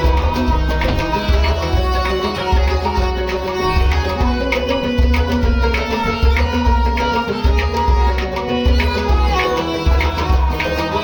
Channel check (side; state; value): both; identical; correlation 1.00